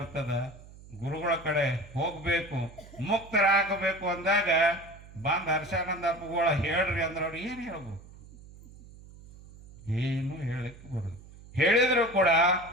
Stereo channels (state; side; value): noise; right; hum, 20 dB below the sound